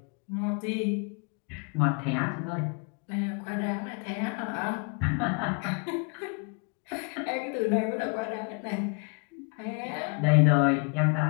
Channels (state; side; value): quieter; right; 36.5 dB